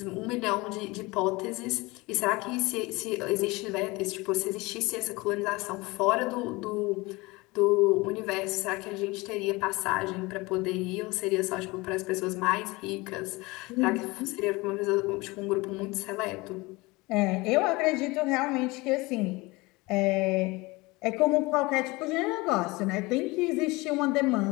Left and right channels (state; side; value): quieter; right; 23.2 dB